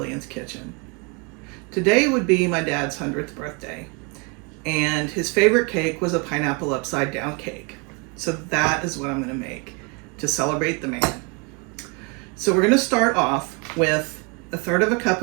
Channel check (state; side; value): quieter; left; 32.2 dB